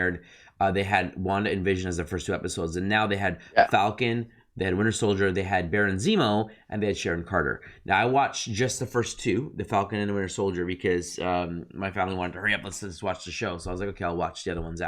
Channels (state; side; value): identical; both; correlation 1.00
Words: they had Wanda and Vision as the first two episodes, and now they had Yeah, Falcon, they had Winter Soldier, they had Baron Zemo, and they had Sharon Carter. Now I watched just the first two, the Falcon and the Winter Soldier, because my family wanted to hurry up. Let's watch the show. So I was like, okay, I'll watch the other ones